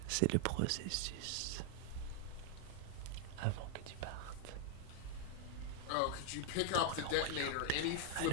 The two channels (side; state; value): both; different; correlation 0.00